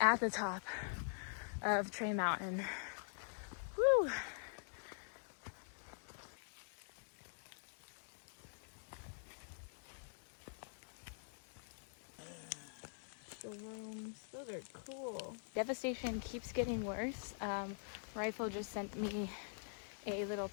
the top of Trey Mountain. Woo! Shrooms, those are cool. Devastation keeps getting worse. Rifle just sent me a little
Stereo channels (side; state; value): right; silent; digital silence